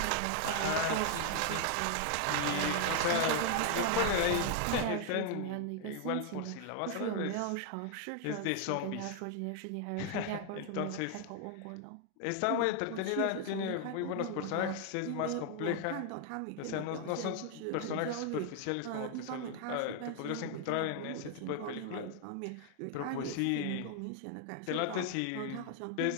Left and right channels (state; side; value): different; both; correlation 0.00